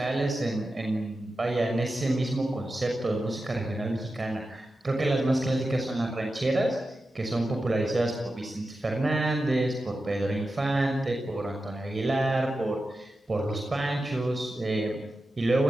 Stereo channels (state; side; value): normal; both; correlation 0.91